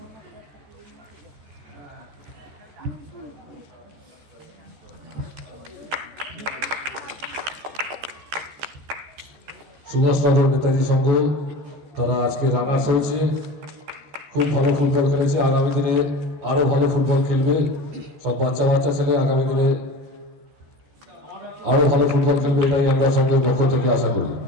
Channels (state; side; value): late; left; 14 ms